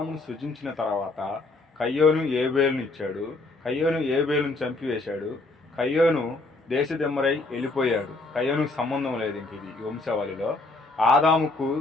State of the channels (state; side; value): quieter; right; 3.2 dB